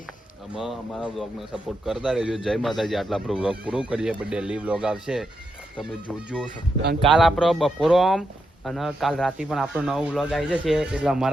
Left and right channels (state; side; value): normal; both; correlation 0.84